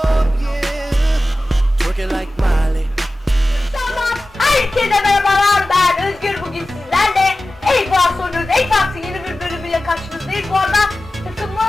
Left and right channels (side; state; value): both; normal; correlation 0.95